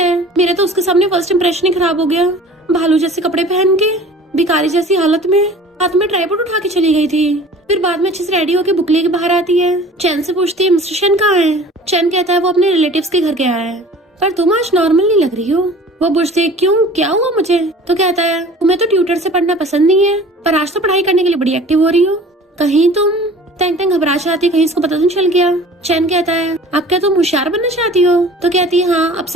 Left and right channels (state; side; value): normal; both; correlation 0.45